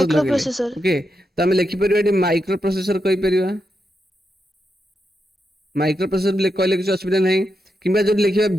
लगेले microprocessor. ओके तो आम लिखिपर ये माइक्रो प्रोसेसर कहीपर माइक्रो प्रोसेसर कहले किसी असुविधा ना कि जो लिखा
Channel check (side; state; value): both; normal; correlation 0.85